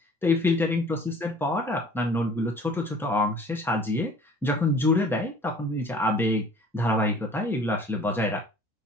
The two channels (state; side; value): normal; both; correlation 0.49